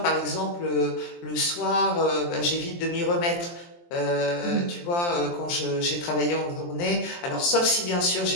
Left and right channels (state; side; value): late; right; 23 ms